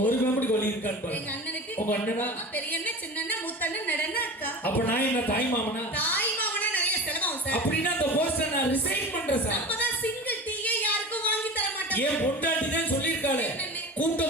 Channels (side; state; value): both; normal; correlation 0.33